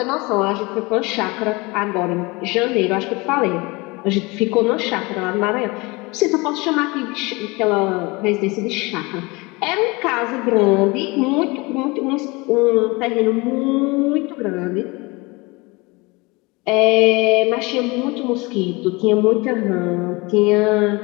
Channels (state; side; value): quieter; right; 25.0 dB